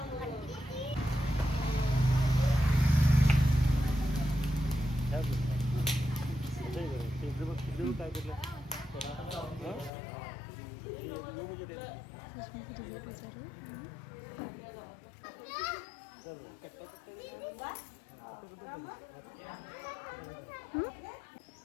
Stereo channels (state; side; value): drops out; right; at 9.9 s